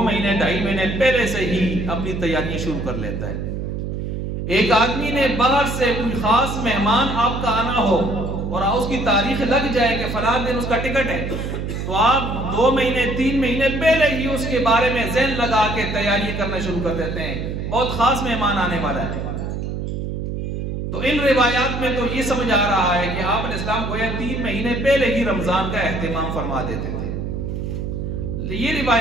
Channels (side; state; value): right; noise; hum, 4 dB below the sound